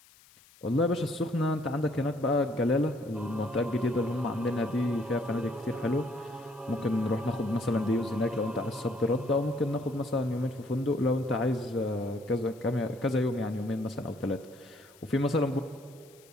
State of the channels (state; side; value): noise; left; hiss, 27 dB below the sound